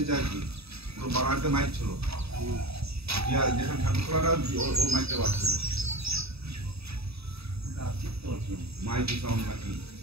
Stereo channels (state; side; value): late; left; 0.78 ms